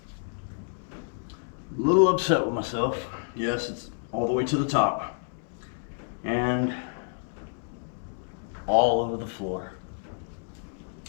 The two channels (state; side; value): silent; right; digital silence